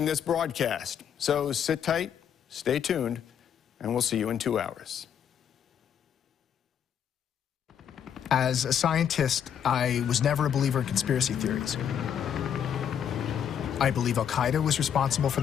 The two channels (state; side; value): quieter; right; 8.7 dB